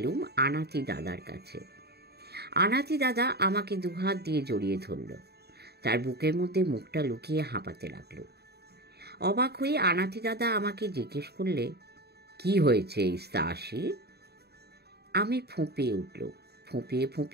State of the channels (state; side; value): late; left; 0.47 ms